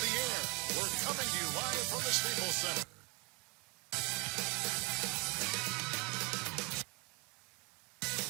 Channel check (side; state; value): left; quieter; 30.7 dB